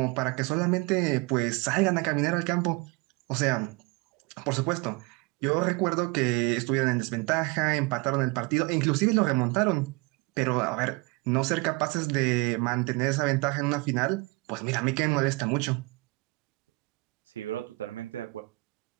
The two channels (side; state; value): left; quieter; 26.3 dB